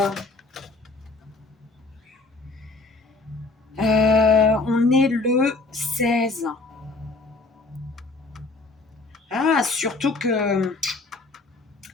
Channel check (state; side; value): quieter; right; 3.5 dB